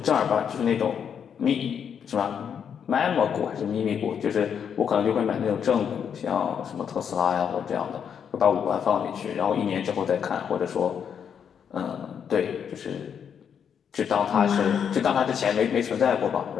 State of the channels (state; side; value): quieter; right; 7.7 dB